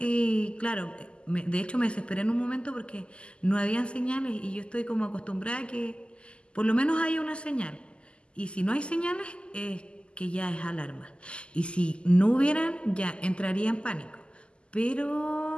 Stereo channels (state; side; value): late; right; 0.052 ms